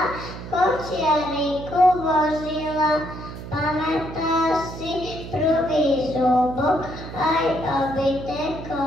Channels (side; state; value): right; noise; hum, 11 dB below the sound